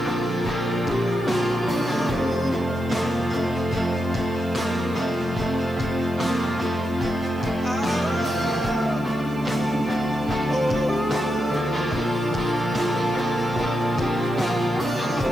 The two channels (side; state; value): right; noise; hiss, 26 dB below the sound